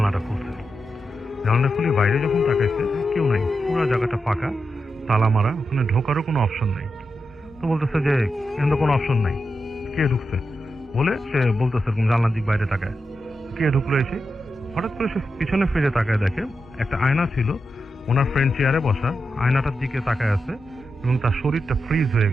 খুলছে, জানলাটা খুলে বাইরে যখন তাকাইছে কেউ নাই, পুরো জায়গাটা ফাঁকা, তালা মারা, ওখানে ঢোকারও কোনো অপশন নাই। তো বলতেছে যে এখানে কোনো অপশন নাই, কে ঢুকছে বলে সে বলতেছে এরকম জানলার দিক বাইরে তাকায়, কে ঢুকলো এসে। হঠাৎ করে সে পিছনে ফিরে তাকায়, দেখে একটা আয়না ছিল, ওনার ফ্রেন্ড চেয়ারে বসা, আয়নাটার দিকে তাকায় আছে, এবং তার শরীরটা ফ্রিজ হয়ে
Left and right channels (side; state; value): both; normal; correlation 0.88